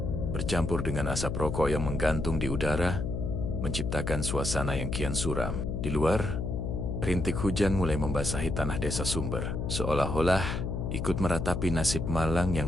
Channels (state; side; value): noise; left; hum, 2 dB below the sound